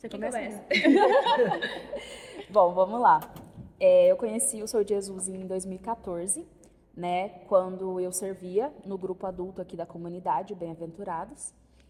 Quem começa? Bom, vamos lá. Eu conheci o Sou de Jesus em 2014, né, quando eu servia no grupo adulto aqui da comunidade, Bem-Aventurados.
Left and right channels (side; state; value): both; identical; correlation 1.00